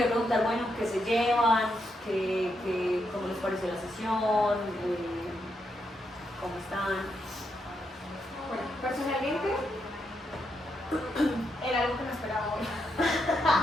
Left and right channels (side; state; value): both; normal; correlation 0.81